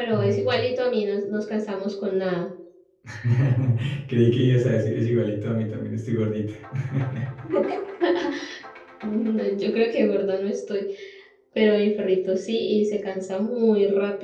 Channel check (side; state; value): both; identical; correlation 1.00